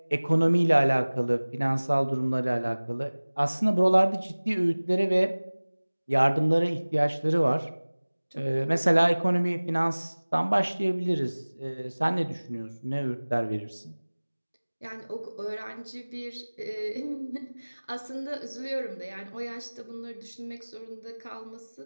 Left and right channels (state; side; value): inverted; both; correlation -1.00